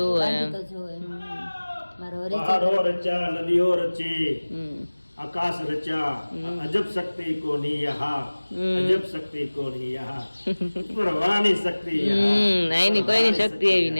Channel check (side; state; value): both; inverted; correlation -1.00